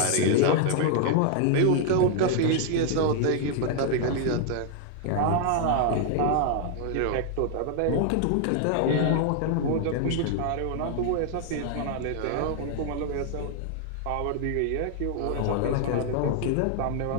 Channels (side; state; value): both; different; correlation 0.00